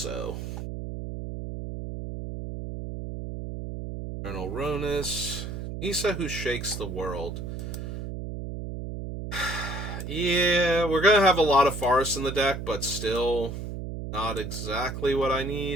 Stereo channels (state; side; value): noise; right; hum, 6 dB below the sound